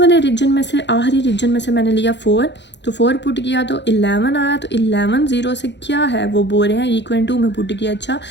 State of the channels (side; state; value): right; late; 0.51 ms